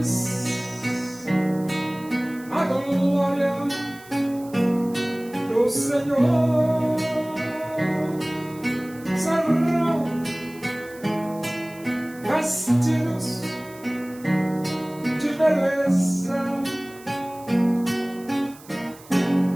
a glória do Senhor, serão vestidos de beleza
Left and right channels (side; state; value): right; noise; hiss, 22 dB below the sound